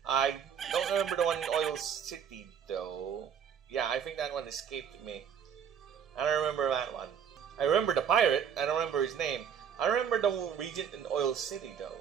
I don't remember the one in Oil City, though. Yeah, I think that one escaped me. I don't remember that one. I remember the pirate. I don't remember his name. I remember the regent in Oil City, though.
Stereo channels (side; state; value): left; quieter; 7.9 dB